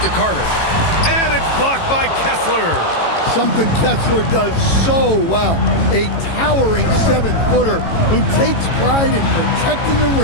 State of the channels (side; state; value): right; late; 18 ms